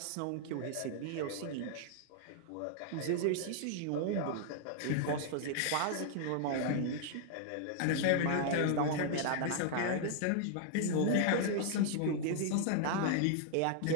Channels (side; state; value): both; different; correlation -0.01